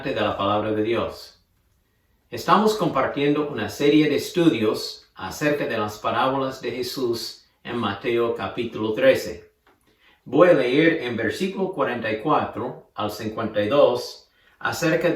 de la Palabra de Dios. Estamos compartiendo una serie de estudios acerca de las parábolas de Jesús en Mateo capítulo 13. Voy a leer en versículo 44 al 52 acerca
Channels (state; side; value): identical; both; correlation 1.00